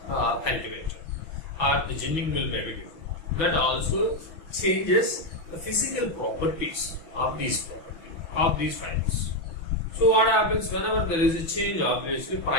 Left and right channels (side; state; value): right; late; 6.1 ms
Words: cultivator, or the ginning mill may be different. That also changes the physical properties of these fibers. So what happens whenever there is a change? Obviously,